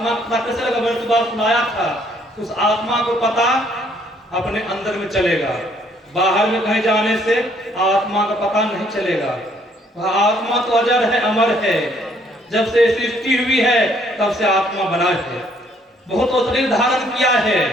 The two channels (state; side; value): normal; both; correlation 0.65